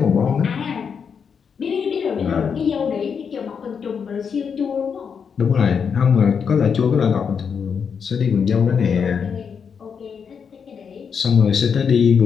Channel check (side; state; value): right; quieter; 6.6 dB